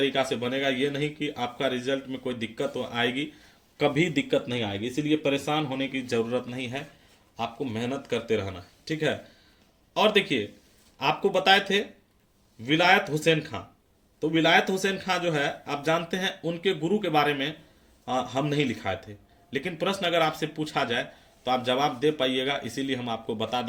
से बनेगा। ये नहीं कि आपका रिजल्ट में कोई दिक्कत आएगी, कभी दिक्कत नहीं आएगी, इसीलिए परेशान होने की ज़रूरत नहीं है, आपको मेहनत करते रहना है, ठीक है। और देखिए आपको बताए थे विलायत हुसैन खां, तो विलायत हुसैन खां जो है आप जानते हैं उनके गुरु के बारे में हम नहीं लिखाए थे, लेकिन प्रश्न अगर आपसे पूछा जाए तो आप जवाब दे पाइएगा, इसीलिए हम आपको बता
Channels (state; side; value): identical; both; correlation 1.00